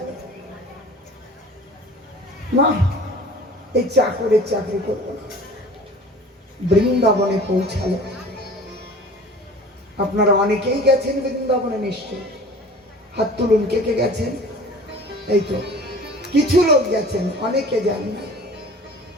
না এই চাকরের চাকরি করব না। বৃন্দাবনে পৌঁছালো। আপনারা অনেকেই গেছেন বৃন্দাবনে নিশ্চয়, হাত তুলুন কে কে গেছেন। এই তো কিছু লোক গেছেন, অনেকে যান না।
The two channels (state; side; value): normal; both; correlation 0.44